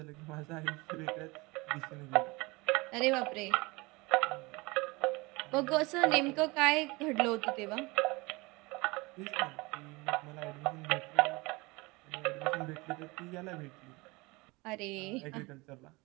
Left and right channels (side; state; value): left; quieter; 24.3 dB